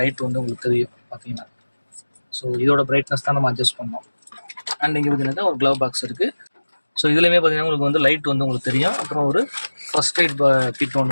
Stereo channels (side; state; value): both; inverted; correlation -1.00